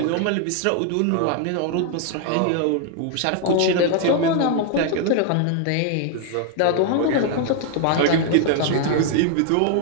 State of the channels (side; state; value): both; different; correlation 0.00